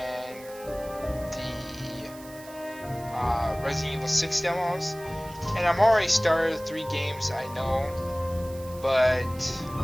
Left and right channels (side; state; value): right; noise; hiss, 19 dB below the sound